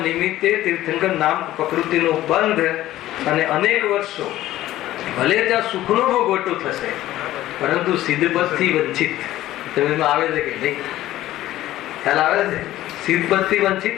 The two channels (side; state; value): right; quieter; 14.7 dB